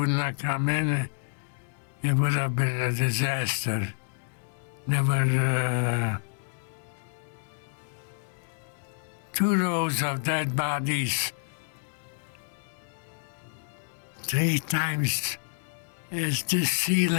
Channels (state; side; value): silent; right; digital silence